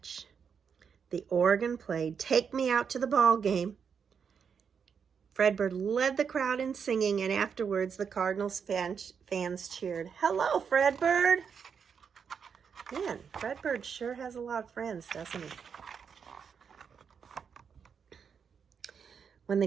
The organ played "Take Me Out to the Ball Game." Fredbird led the crowd in singing, and afterwards the Cardinals fans cheered, "Hello, Fredbird." Man, Fredbird sure has a lot of friends, doesn't he? With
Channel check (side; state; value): left; quieter; 6.7 dB